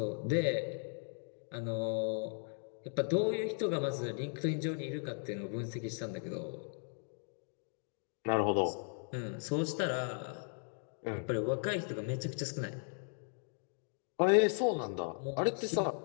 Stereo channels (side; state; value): right; silent; 53 dB below the other